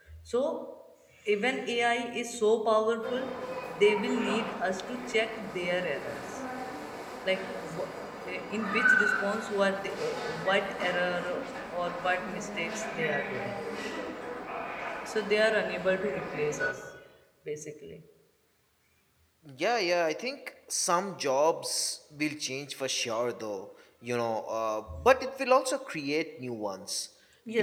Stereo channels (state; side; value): identical; both; correlation 1.00